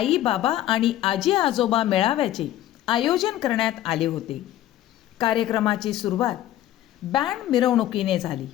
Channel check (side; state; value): right; quieter; 13.3 dB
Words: बाबा आणि आजी आजोबा मेळाव्याचे आयोजन करण्यात आले होते. कार्यक्रमाची सुरुवात बँड मिरवणुकीने झाली.